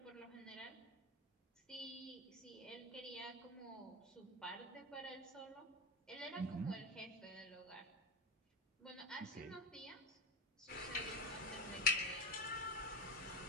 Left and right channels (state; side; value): normal; both; correlation 0.20